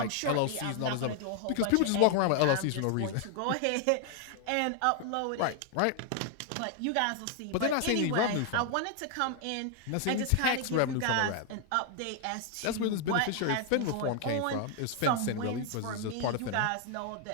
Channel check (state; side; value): different; both; correlation 0.00